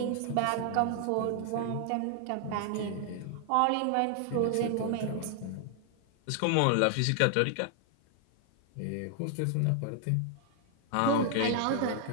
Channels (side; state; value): both; different; correlation 0.00